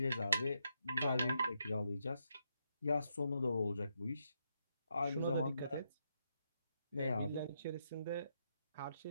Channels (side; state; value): both; inverted; correlation -0.80